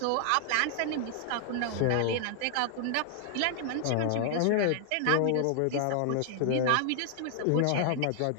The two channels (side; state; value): both; different; correlation -0.01